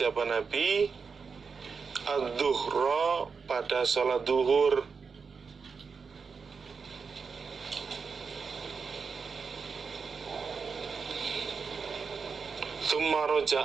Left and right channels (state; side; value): quieter; left; 5.4 dB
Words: Nabi, ad-duhra, pada sholat duhur. Tsumma